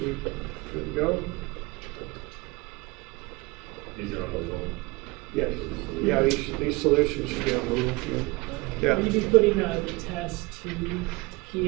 good to go? These are on the wall. Yes. Yeah, these solutions should be on Google. Yeah. Will you be putting the test to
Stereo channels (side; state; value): left; quieter; 24.5 dB